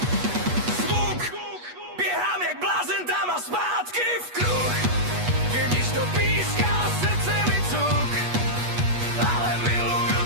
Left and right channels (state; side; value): late; left; 8.3 ms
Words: Zvuk, běhám jak blázen tam a zpátky v kruh. Když to píská, srdce mi cuk, ale miluju